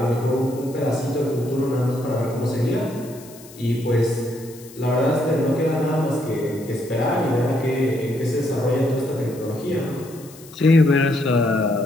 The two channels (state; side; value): noise; left; hiss, 21 dB below the sound